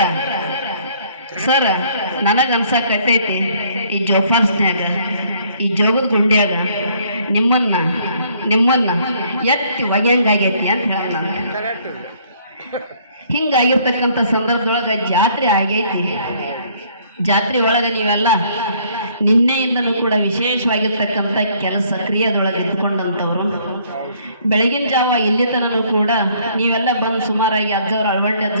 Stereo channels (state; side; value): inverted; both; correlation -0.62